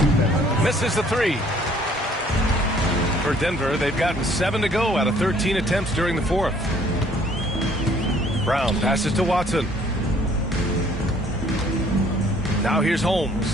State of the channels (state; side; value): normal; both; correlation 0.59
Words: Misses the 3. For Denver, they've gotten 7 to go out of 13 attempts during the 4th. Brown passes to Watson. Now here's